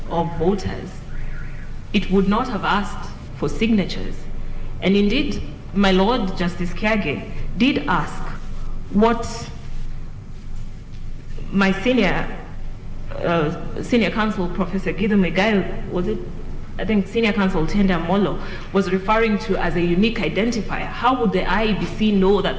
of voters. It would not have asked for signatures. And indeed, my Lord Justice Kiage did ask what my senior counsel, Professor Gideon Megail, was it? I think Senior Counsel Tenda Molo was referring to as a unique identifier. How would the IEBC know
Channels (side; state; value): both; identical; correlation 1.00